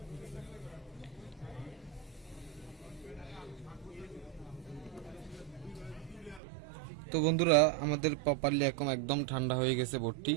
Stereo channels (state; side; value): drops out; left; at 6.4 s